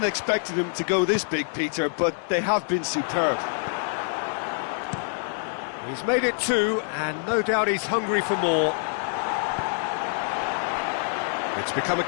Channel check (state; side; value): silent; right; digital silence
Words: expecting them to go this big, Peter, but they have been superb. He's made it two, and no doubt he's hungry for more. It's become a